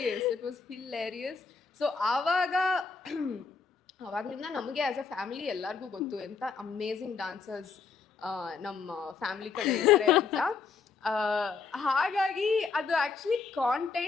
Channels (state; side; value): quieter; right; 5.2 dB